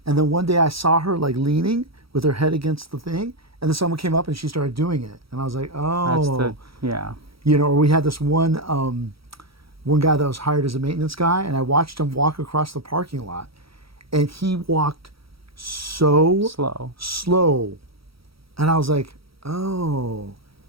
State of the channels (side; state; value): left; late; 0.75 ms